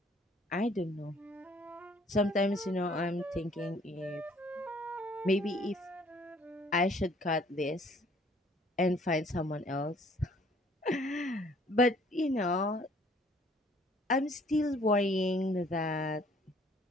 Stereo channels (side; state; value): both; normal; correlation 0.59